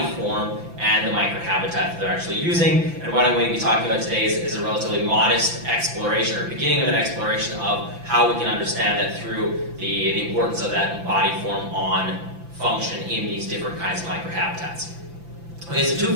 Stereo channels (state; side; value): late; left; 5.9 ms